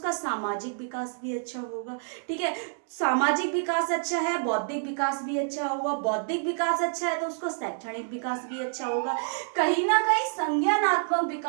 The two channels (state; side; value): silent; left; digital silence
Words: सामाजिक विकास भी अच्छा होगा, ठीक है। सामाजिक विकास अच्छा है, बौद्धिक विकास भी अच्छा होगा, बौद्धिक विकास अच्छा है तो उसका शैक्षणिक विकास भी अच्छा होगा। कहीं ना कहीं संज्ञानात्मक